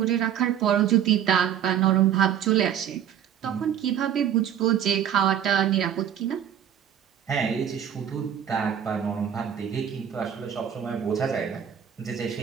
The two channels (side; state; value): left; quieter; 9.4 dB